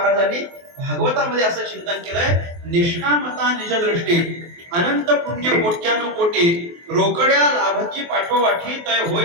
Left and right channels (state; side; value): late; left; 23 ms